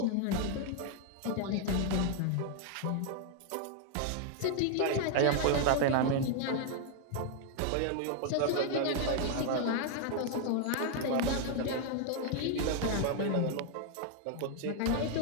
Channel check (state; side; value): different; both; correlation 0.00